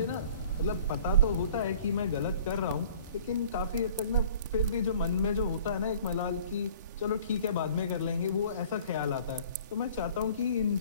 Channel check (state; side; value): inverted; both; correlation -0.50